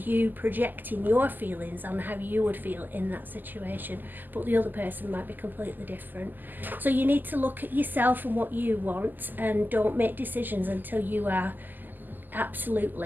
you projecting your feelings on how you would feel in that situation, but the other person might be completely different. So you need to look at yourself and what you want, and don't make decisions until you are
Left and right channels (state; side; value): late; left; 0.088 ms